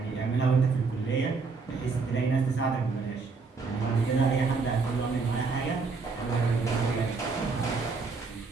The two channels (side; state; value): left; quieter; 4.4 dB